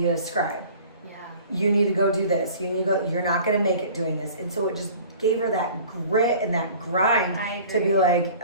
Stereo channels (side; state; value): both; inverted; correlation -0.46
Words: a scribe. Yeah. You need to go do this. You need to go, you're not going to make it doing this. And so it just gave her that grit and that grind to be like,